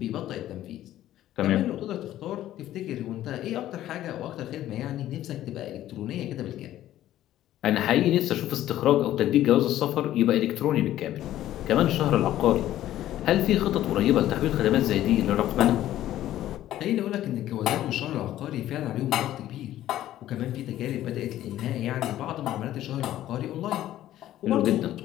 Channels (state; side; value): quieter; right; 13.3 dB